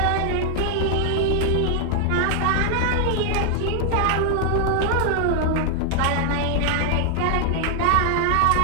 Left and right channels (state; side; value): different; both; correlation 0.00